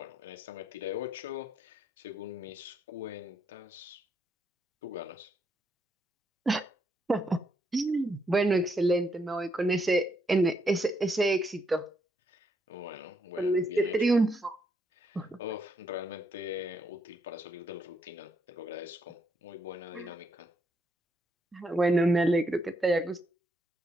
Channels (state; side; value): normal; both; correlation 0.77